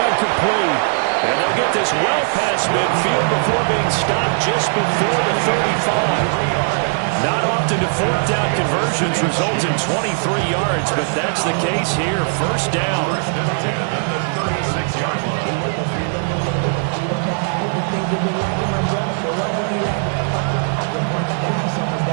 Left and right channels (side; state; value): left; silent; 67 dB below the other